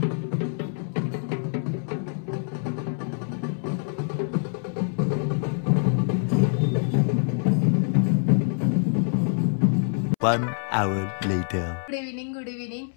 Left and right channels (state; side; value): silent; right; 61 dB below the other